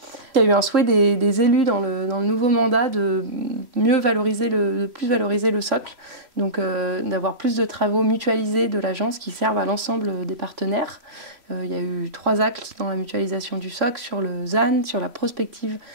Il y a eu un souhait des élus dans le nouveau mandat de plus valoriser le socle, donc d'avoir plus de travaux mutualisés de l'agence qui servent à l'ensemble des partenaires. Il y a eu 3 actes dans la mutualisation du socle, sur le ZAN, sur la prospective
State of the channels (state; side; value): late; left; 3.0 ms